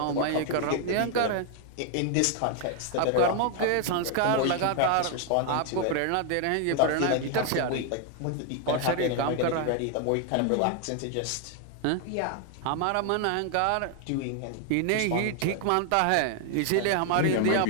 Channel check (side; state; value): both; different; correlation 0.00